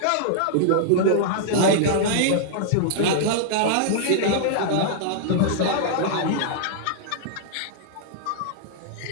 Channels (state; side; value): different; both; correlation -0.01